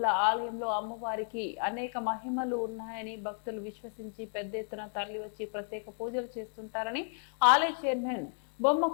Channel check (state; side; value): silent; right; digital silence